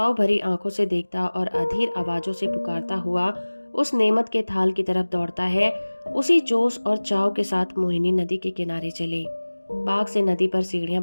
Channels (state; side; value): inverted; both; correlation -1.00